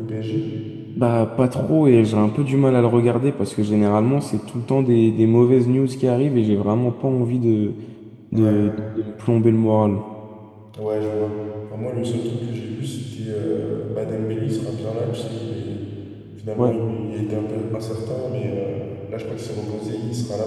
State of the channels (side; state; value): both; identical; correlation 1.00